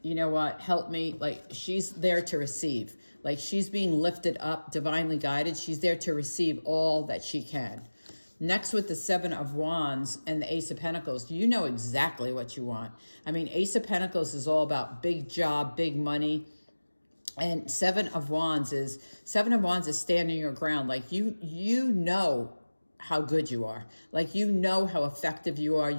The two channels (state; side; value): inverted; both; correlation -1.00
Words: you know what, help me. Like, she's there to receive. Like, she's being lifted up, divinely guided. She's there to receive all that she can. Next, with the Seven of Wands and the Ace of Pentacles, you know exactly what you want. I mean, Ace of Pentacles is all about big job, big money. And Seven of Wands is standing your ground. Like, you know how good you are. Like, you know how effective you are.